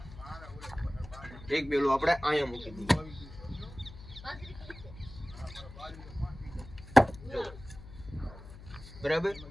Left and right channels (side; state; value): left; noise; hum, 16 dB below the sound